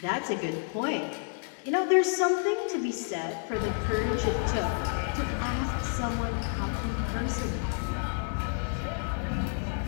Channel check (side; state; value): right; silent; 58 dB below the other